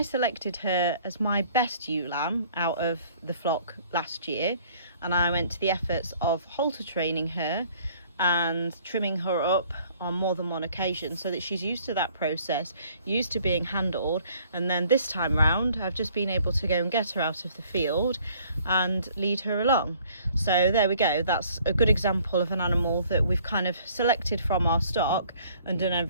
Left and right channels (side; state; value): both; inverted; correlation -0.58